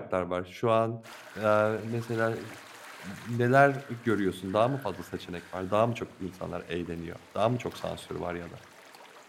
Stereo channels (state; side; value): identical; both; correlation 1.00